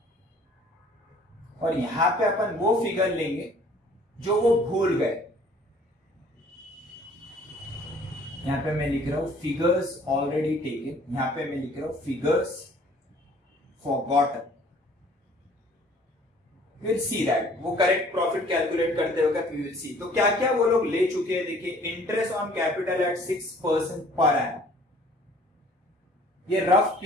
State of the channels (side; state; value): both; normal; correlation 0.55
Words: और यहां पे अपन वो फिगर लेंगे जो वो भूल गए। यहां पे मैं लिख रहा हूं फिगर्स ऑलरेडी टेकन, यहां पे मैं लिख रहा हूं figures forgotten. Will see that, वो करेक्ट प्रॉफिट कैलकुलेट करते वक्त वी विल सी। तो क्या क्या वो लोग ले चुके हैं, देखिए interest on capital eight 6% per annum, ये रफ